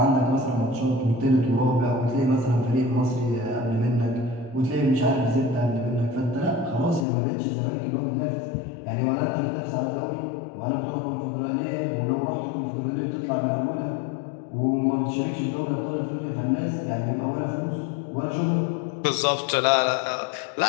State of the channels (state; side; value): drops out; right; at 7.1 s